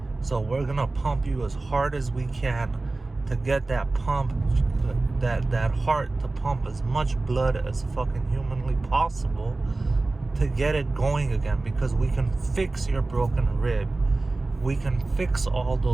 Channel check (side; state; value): left; quieter; 3.2 dB